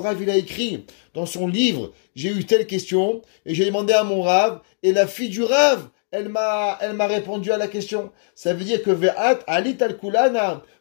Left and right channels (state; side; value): silent; right; digital silence